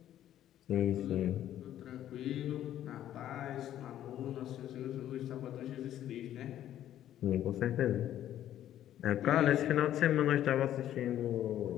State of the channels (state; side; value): quieter; right; 11.8 dB